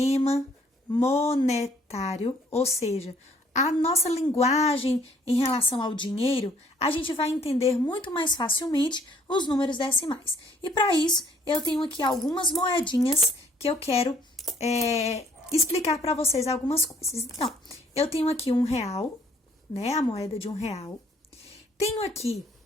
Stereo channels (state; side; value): normal; both; correlation 0.62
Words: monetário, ou seja, a nossa linguagem em relação ao dinheiro, a gente vai entender muito mais facilmente os números decimais. E para isso, eu tenho aqui algumas moedinhas que eu quero explicar para vocês algumas coisas. Então, eu tenho aqui R$1, né? A moeda de R$1. Tenho aqui